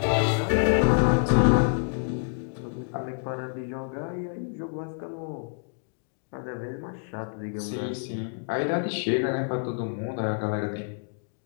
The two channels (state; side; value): silent; right; digital silence